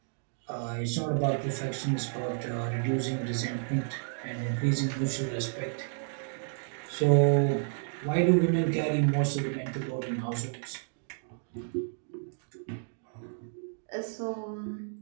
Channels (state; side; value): silent; left; digital silence